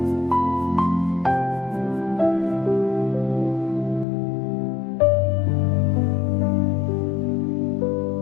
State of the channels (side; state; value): right; drops out; at 4.0 s